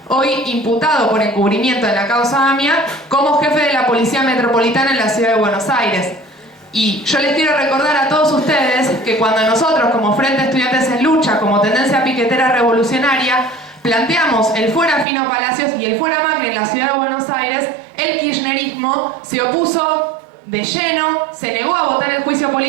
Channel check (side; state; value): left; drops out; at 15.1 s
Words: hoy imputado por encubrimiento en la causa AMIA, como jefe de la Policía Metropolitana en la Ciudad de Buenos Aires. Y yo les quiero recordar a todos ustedes que cuando nosotros, como Frente Estudiantes en Lucha, como Tendencia Piquetera Revolucionaria, planteamos el fuera Fino Palacios y el fuera Macri en la Ciudad de Buenos Aires, el kirchnerismo se opuso de lleno, se negó a votar el juicio